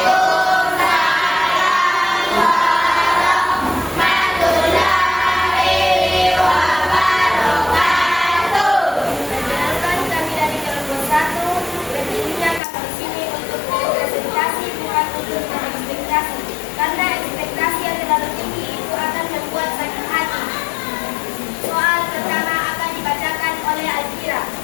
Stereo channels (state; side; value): drops out; right; at 12.6 s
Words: Perkenalkan, kami dari kelompok 1. Berdirinya kami di sini untuk berpresentasi, bukan untuk berekspektasi. Karena ekspektasi yang terlalu tinggi itu akan membuat sakit hati. Soal pertama akan dibacakan oleh Alfira.